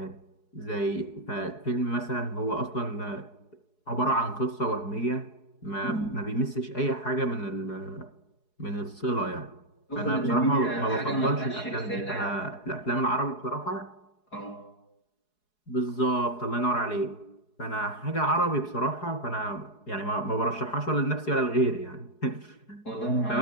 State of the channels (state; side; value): late; right; 4.7 ms